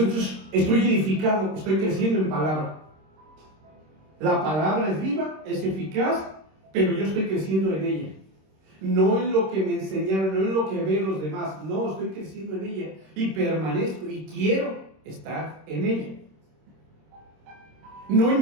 entonces, estoy edificado, estoy creciendo en palabra. La palabra es viva, es eficaz, pero yo estoy creciendo en ella. No en lo que me enseñaron, no en lo que ven los demás. No, estoy creciendo en ella y permanezco y quiero estar en ella. No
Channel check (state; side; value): late; left; 26 ms